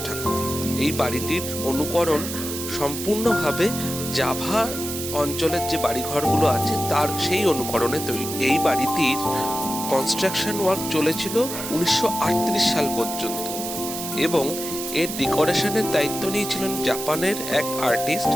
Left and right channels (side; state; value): right; noise; hiss, 7 dB below the sound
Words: ঠাকুর। এই বাড়িটির অনুকরণ সম্পূর্ণভাবে জাভা অঞ্চলের যে বাড়িঘরগুলো আছে তার সেই অনুকরণে তৈরি। এই বাড়িটির কনস্ট্রাকশন ওয়ার্ক চলেছিল 1938 সাল পর্যন্ত এবং এর ডেকোরেশনের দায়িত্ব নিয়েছিলেন জাপানের এক আর্টিস্ট,